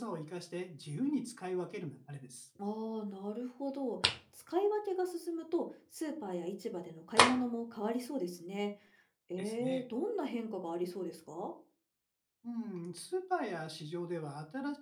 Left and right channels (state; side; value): identical; both; correlation 1.00